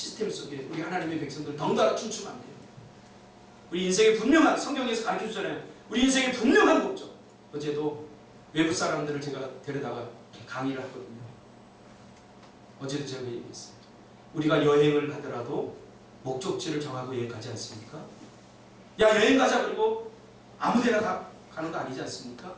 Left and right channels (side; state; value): both; identical; correlation 1.00